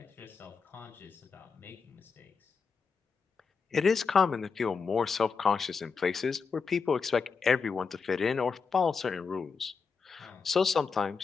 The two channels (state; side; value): quieter; right; 5.3 dB